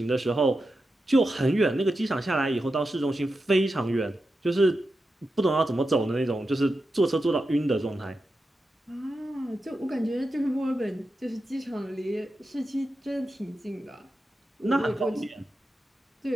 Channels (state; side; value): normal; both; correlation 0.90